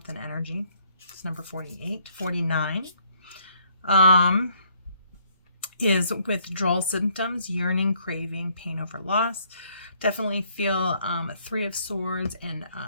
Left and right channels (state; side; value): inverted; both; correlation -0.66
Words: and energy. It's number 48. 49 is withdrawal symptoms, yearning, craving, pain over loss. Definitely feel Three of Swords and